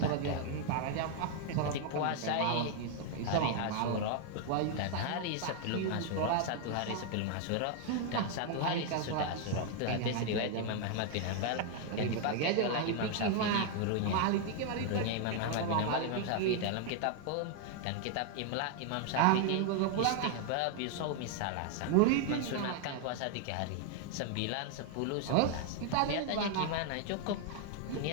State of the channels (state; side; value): different; both; correlation 0.00